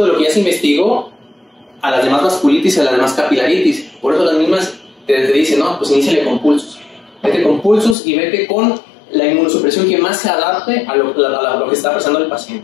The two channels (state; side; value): drops out; right; at 8.0 s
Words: de lo que ya se investigó a las demás vasculitis y a las demás capilaritis. Por eso las mismas te dicen, no, pues iníciale con pulsos. Vete con pulsos y vete con la inmunosupresión que más se adapte a lo que está pasando el